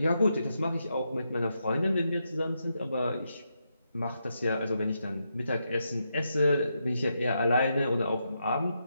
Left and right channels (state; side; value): inverted; both; correlation -0.83